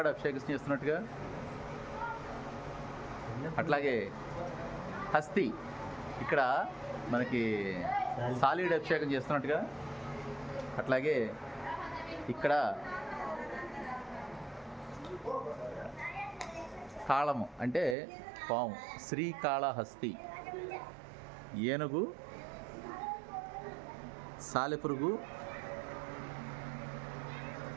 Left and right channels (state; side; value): drops out; left; at 17.9 s